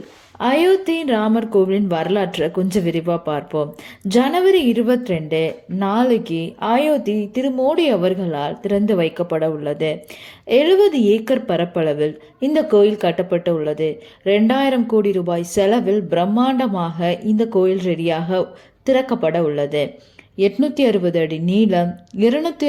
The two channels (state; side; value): identical; both; correlation 1.00